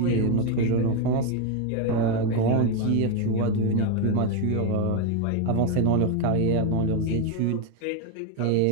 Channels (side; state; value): both; different; correlation 0.01